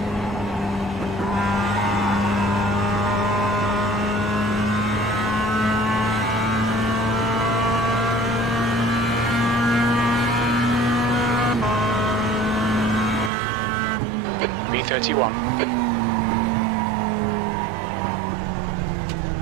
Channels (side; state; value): left; drops out; at 13.3 s